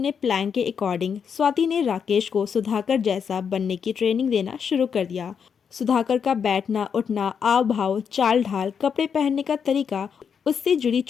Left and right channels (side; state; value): right; quieter; 6.9 dB